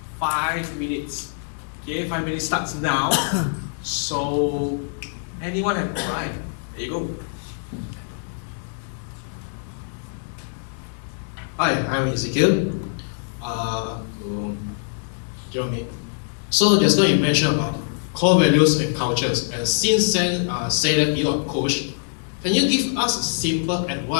5 minutes. Okay, 5 minutes starts now. So, anyone have? All right. There you go. Hi, I'm Ezekiel. To Jerome. So just now you mentioned about core values and cultures, and since then say that you are a coach, can you give us a simple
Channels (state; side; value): silent; right; digital silence